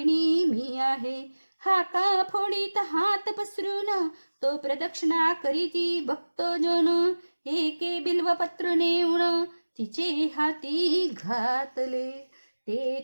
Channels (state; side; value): inverted; both; correlation -1.00